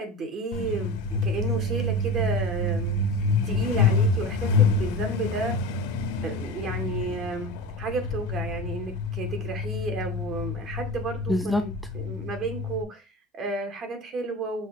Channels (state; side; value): normal; both; correlation 0.30